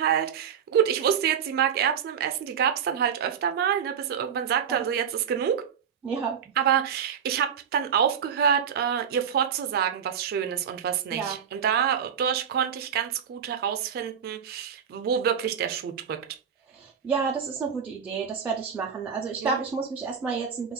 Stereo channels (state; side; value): quieter; left; 7.8 dB